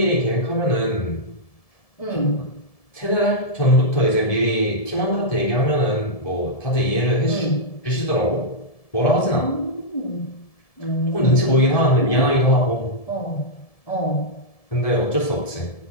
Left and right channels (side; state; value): right; late; 1.7 ms